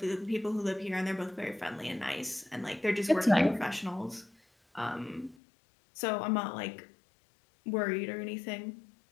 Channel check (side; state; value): right; drops out; at 5.4 s